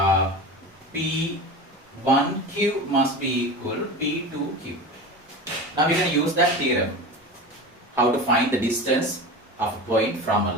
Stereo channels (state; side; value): normal; both; correlation 0.30